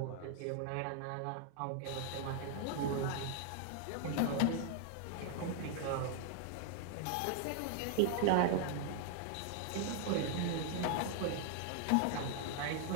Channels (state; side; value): different; both; correlation 0.00